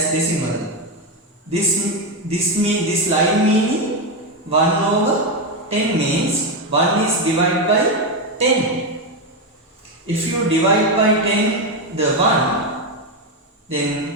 decimal. This line meaning 1 over 10 means 1 is divided by 10. If you divide by 10 the 1,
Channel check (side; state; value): both; normal; correlation 0.09